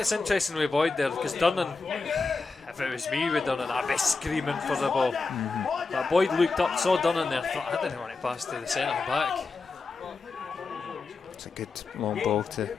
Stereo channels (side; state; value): right; quieter; 4.1 dB